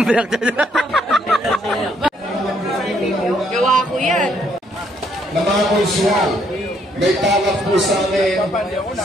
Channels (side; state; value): both; normal; correlation 0.70